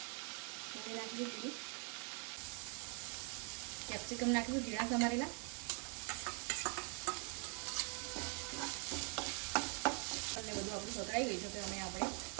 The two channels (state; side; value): quieter; left; 36.1 dB